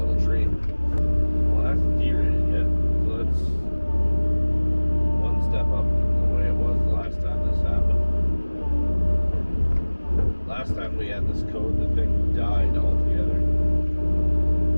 tree. Well, that's derated yet, so that's one step up from the way it was the last time this happened. Last time we had this code, the thing died altogether.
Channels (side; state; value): both; inverted; correlation -1.00